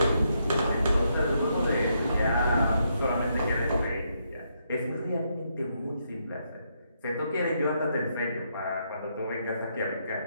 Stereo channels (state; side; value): inverted; both; correlation -0.78